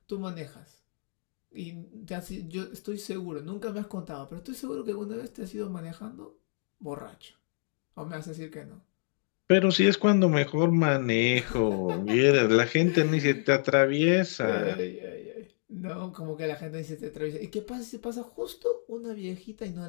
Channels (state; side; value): silent; right; 58 dB below the other